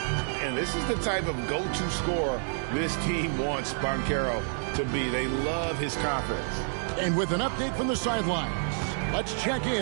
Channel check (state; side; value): silent; left; digital silence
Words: this is the type of go-to scorer this team wants Banchero to be. They love his confidence. And with an update from the sidelines, let's check